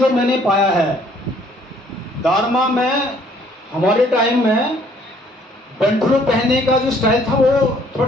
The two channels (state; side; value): normal; both; correlation 0.61